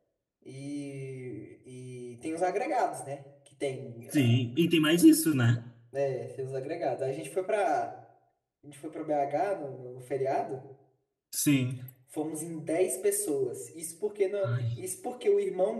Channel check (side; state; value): both; identical; correlation 1.00